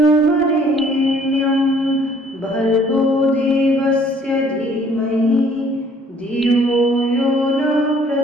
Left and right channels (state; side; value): normal; both; correlation 0.58